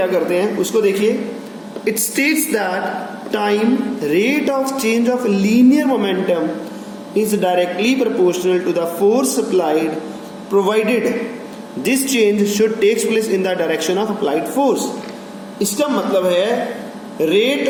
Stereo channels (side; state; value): both; identical; correlation 1.00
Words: करते हैं उसको देखिए। It states that time rate of change of linear momentum is directly proportional to the force applied, provided this change should takes place in the direction of applied force. इसका मतलब है rate